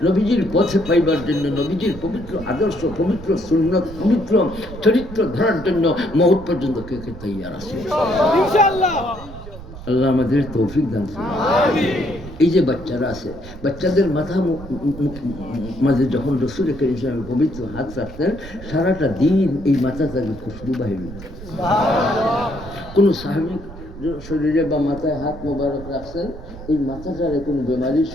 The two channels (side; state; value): right; noise; rumble, 14 dB below the sound